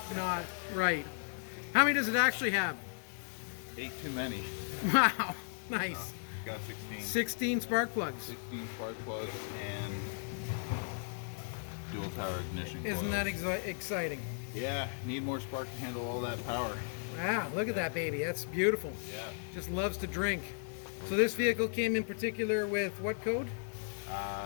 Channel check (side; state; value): right; silent; digital silence